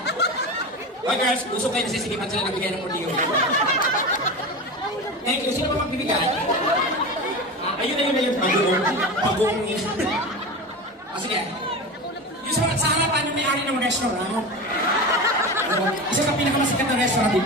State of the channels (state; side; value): normal; both; correlation 0.26